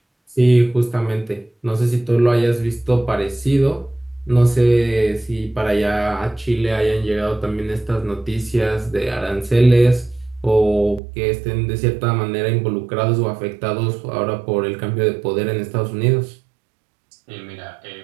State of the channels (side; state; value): left; drops out; at 11.0 s